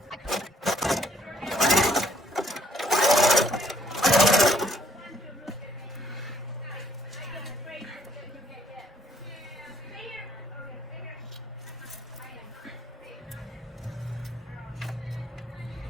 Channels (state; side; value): normal; both; correlation 0.65